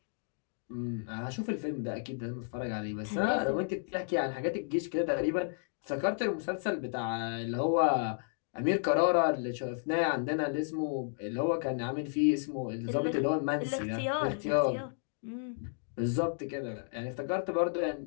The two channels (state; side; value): silent; right; digital silence